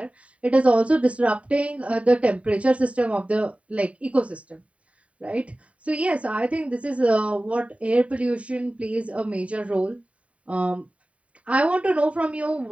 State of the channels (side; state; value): left; late; 0.065 ms